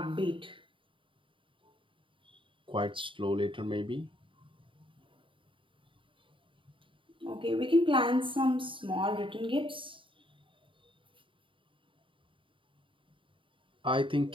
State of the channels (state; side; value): late; left; 0.25 ms